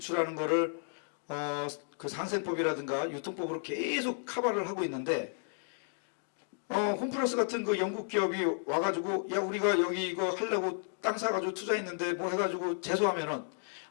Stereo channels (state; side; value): silent; right; digital silence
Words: 거를 그 상생법이라든가 유통법으로 계속 커버를 하고 있는데 홈플러스 같은 그 영국 기업이 와가지고 야 우리가 여기 이거 하려고 땅 사가지고 투자했는데 뭐 해가지고 제소하면은